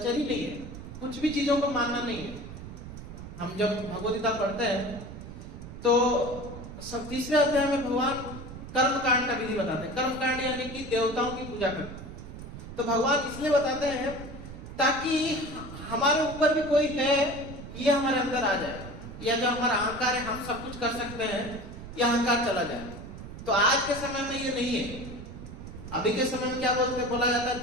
ही नहीं है, कुछ भी चीजों को मानना नहीं है। हम जब भगवद गीता पढ़ते हैं तो सब तीसरे अध्याय में भगवान कर्म कांड का विधि बताते हैं। कर्म कांड यानी कि देवताओं की पूजा करते हैं। तो भगवान इसलिए बताते हैं ताकि हमारे ऊपर भी कोई है ये हमारे अंदर आ जाए, या जो हमारा अहंकार है हम सब कुछ कर सकते हैं, यह अहंकार चला जाए। तो आज के समय में ये नहीं है। अभी के समय में क्या बोला जाता है,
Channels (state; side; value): noise; right; rumble, 12 dB below the sound